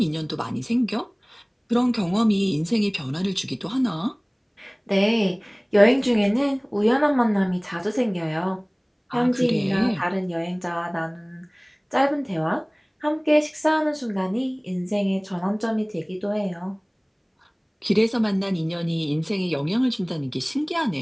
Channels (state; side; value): identical; both; correlation 1.00